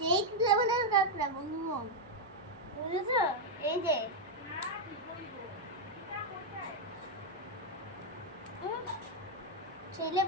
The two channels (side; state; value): left; noise; hum, 30 dB below the sound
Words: লেভেলের কাঁকড়া বন্ধু, বুঝেছো? এই যে সেই